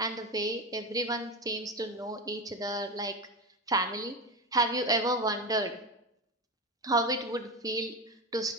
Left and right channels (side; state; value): both; normal; correlation 0.20